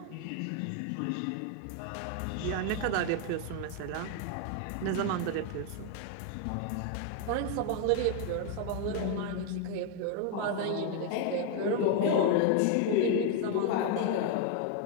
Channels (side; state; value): both; different; correlation 0.00